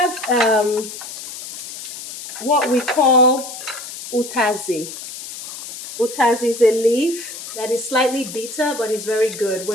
what we call utazi. Utazi is a leaf that is slightly bitter, but it's very good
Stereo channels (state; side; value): noise; left; hiss, 11 dB below the sound